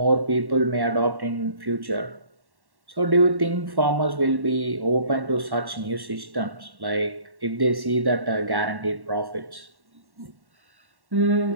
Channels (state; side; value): late; left; 1.1 ms